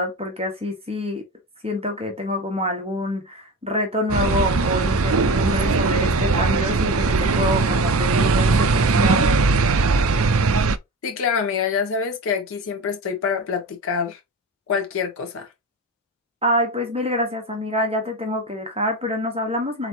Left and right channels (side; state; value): both; normal; correlation 0.30